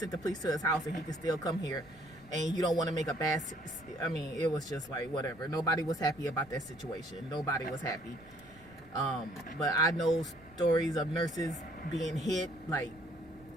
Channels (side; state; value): right; noise; rumble, 25 dB below the sound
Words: the police to his house, and he can still come here, and you don't want to make a bad, I mean, it was just like, whatever. Nobody was happy about that situation. Nobody was happy. But I know stories of nurses being hit. Like,